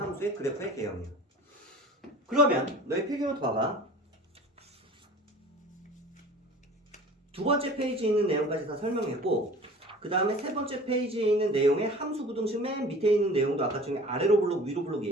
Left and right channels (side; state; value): both; normal; correlation 0.42